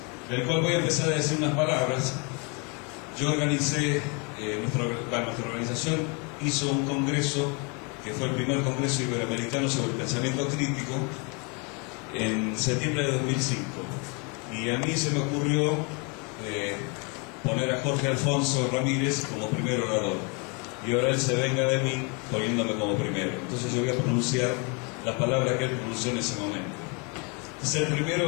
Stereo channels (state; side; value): quieter; right; 33.1 dB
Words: del cual voy a empezar a decir unas palabras. Yo organicé, nuestra organización hizo un congreso, que fue el primer congreso iberoamericano sobre el pensamiento crítico, en septiembre de 2005. Y a mí se me ocurrió poner a Jorge Alfonso Ramírez como primer orador. Y ahora él se venga de mí poniéndome como primero. Entonces yo voy a pronunciar las palabras que él pronunció en ese momento. Ser